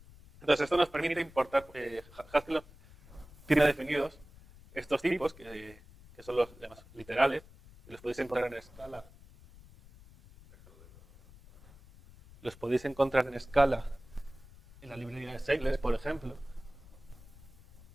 Entonces, esto nos permite importar, Haskell tiene definidos estos tipos, que son los llamados literales, y los podéis encontrar en escala. Los podéis encontrar en escala en la librería de Seidler, por ejemplo.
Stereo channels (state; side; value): noise; left; rumble, 22 dB below the sound